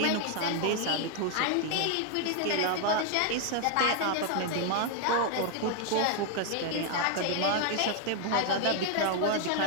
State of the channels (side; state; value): both; different; correlation 0.00